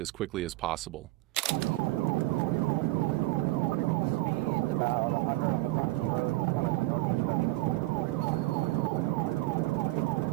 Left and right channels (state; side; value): quieter; left; 19.5 dB